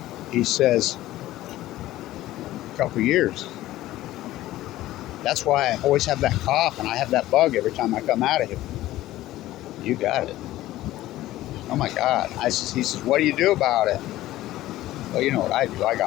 He says, a couple years. That's why I always have that cough, and I have that bug every time I come out of here. You got it. Oh, my God. He says, what do you do about it? Well, you know what I do. I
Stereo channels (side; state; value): right; quieter; 15.5 dB